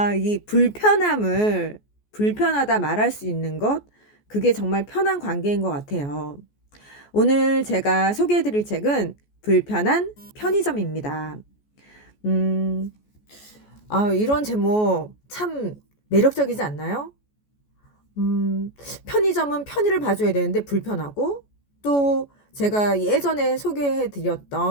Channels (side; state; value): right; late; 14 ms